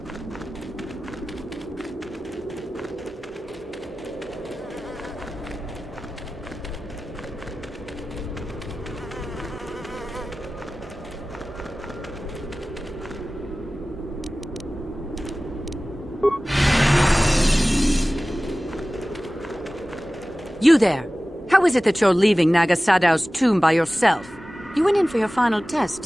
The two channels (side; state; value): both; normal; correlation 0.97